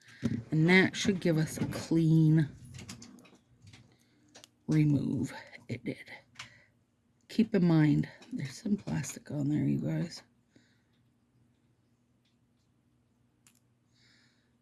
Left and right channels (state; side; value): identical; both; correlation 1.00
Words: And that should give us a clean remove. It did. Keep in mind, there's some plastic on there, you guys.